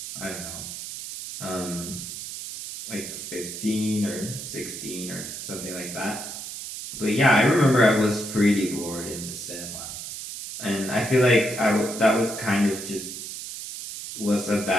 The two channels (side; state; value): right; noise; hiss, 8 dB below the sound